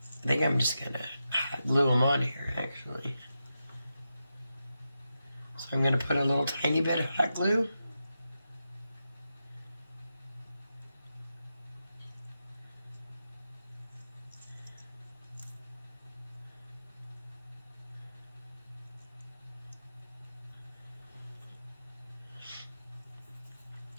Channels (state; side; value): inverted; both; correlation -0.89